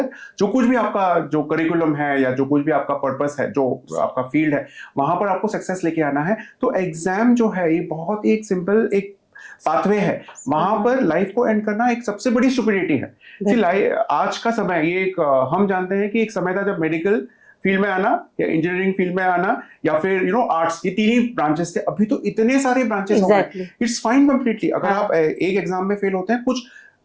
जो कुछ भी आपका जो करिकुलम है या जो कुछ भी आपका पर्पस है, जो आपका फील्ड है, वहां पर आपको सक्सेस लेके आना है। तो एग्जाम जो है ये बहुत एक सिंपल एक पाथवे है, वहां पर लाइफ को एंड करना एक सबसे बड़ी स्टुपिडिटी है। आज का समय ये एक हम जानते हैं कि एक समय था जब मेडिकल फील्ड में आना या इंजीनियरिंग फील्ड में आना या फिर आर्ट्स, ये तीन ही ब्रांचेस थे। अभी तो इतने सारे ब्रांचेस हो गए, इट्स फाइन कंप्लीटली। अगर आप एक एग्जाम में फेल होते हैं, कुछ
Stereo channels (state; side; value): identical; both; correlation 1.00